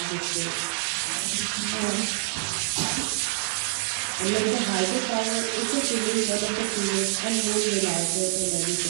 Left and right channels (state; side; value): silent; left; 61 dB below the other